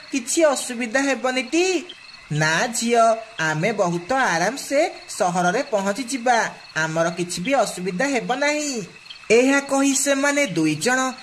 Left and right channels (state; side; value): identical; both; correlation 1.00